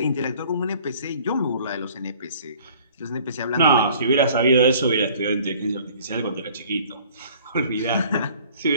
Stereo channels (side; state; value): both; inverted; correlation -0.53